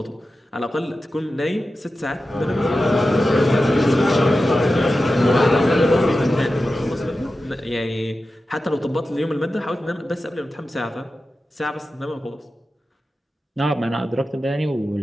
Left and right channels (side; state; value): both; normal; correlation 0.93